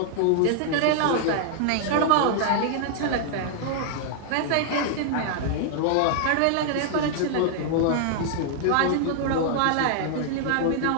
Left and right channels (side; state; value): both; different; correlation -0.01